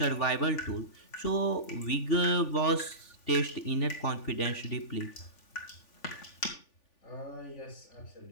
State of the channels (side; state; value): right; late; 3.4 ms